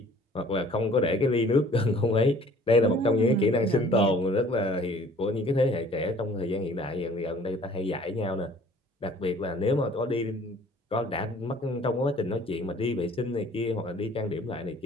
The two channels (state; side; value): normal; both; correlation 0.53